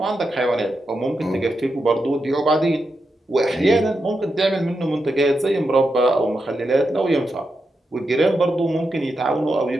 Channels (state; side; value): normal; both; correlation 0.86